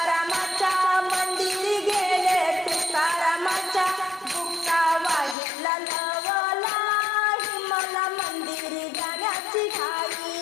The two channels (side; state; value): right; drops out; at 5.4 s